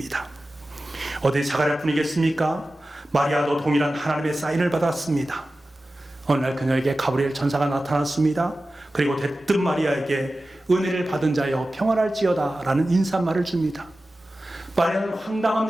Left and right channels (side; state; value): both; normal; correlation 0.95